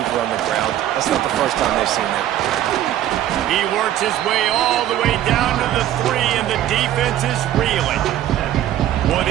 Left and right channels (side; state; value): left; quieter; 12.4 dB